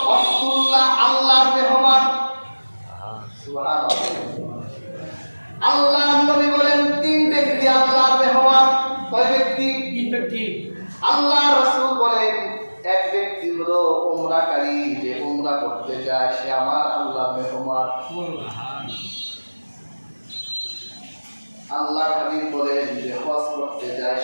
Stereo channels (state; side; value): inverted; both; correlation -1.00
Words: আব্দুল্লাহ আল্লাহর মেহমান। সুবহানাল্লাহ। আল্লাহর নবী বলেন তিন ব্যক্তি আল্লাহর মেহমান। কয় ব্যক্তি? তিন ব্যক্তি। আল্লাহ রাসূল বলেন এক ব্যক্তি হলো উমরাকারী, যে উমরা করতে যায় সে আমার আল্লাহর মেহমান। আল্লাহর হাবিব বলেন যে হজ করতে যায়